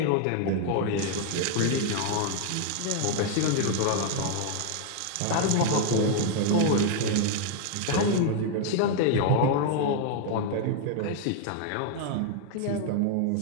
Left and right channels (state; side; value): different; both; correlation 0.00